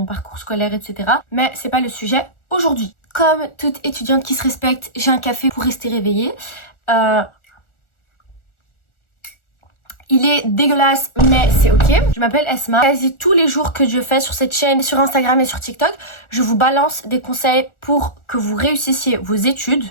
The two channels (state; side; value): late; right; 1.4 ms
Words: parcours scolaire, etc. Mais c'est pas le sujet aujourd'hui. Comme toute étudiante qui se respecte, j'ai un café pour rester réveillée. Il est dégueulasse, mais c'est ok. Je m'appelle Esma. Quasi tous les jours que je fais sur cette chaîne, sur Instagram et sur TikTok, je vous balance des conseils pour que vous réussissiez vos études.